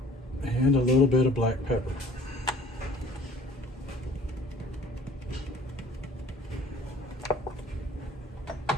And a little bit of black pepper.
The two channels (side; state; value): both; normal; correlation 0.50